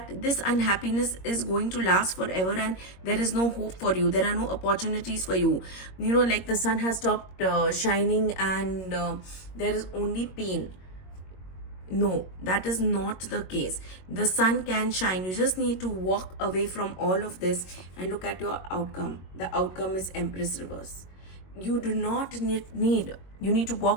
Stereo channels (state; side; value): late; right; 22 ms